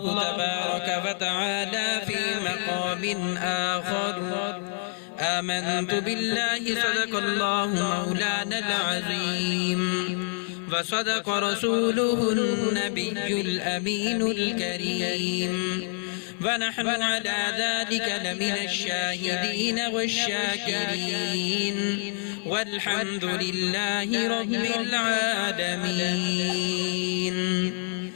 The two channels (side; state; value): right; silent; digital silence